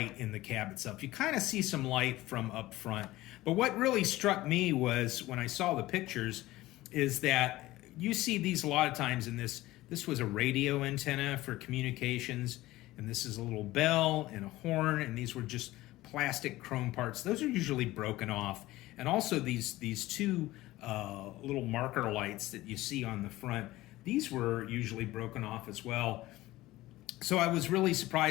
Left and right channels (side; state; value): right; quieter; 17.5 dB